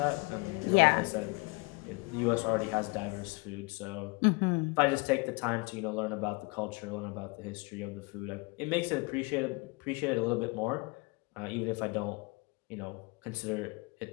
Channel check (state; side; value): quieter; right; 28.0 dB